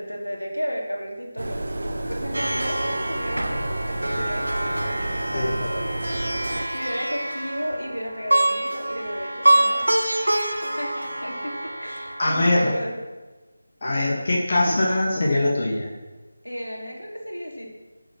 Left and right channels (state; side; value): inverted; both; correlation -0.96